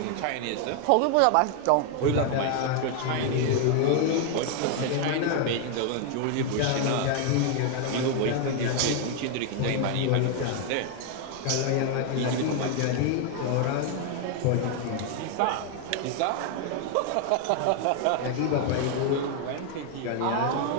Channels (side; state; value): both; different; correlation 0.00